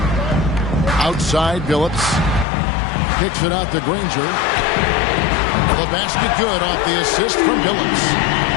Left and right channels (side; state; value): right; drops out; at 2.5 s